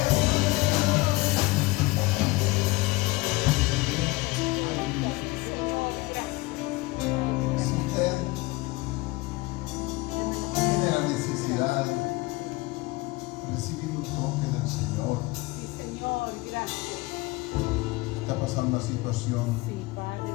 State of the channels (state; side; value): quieter; right; 22.1 dB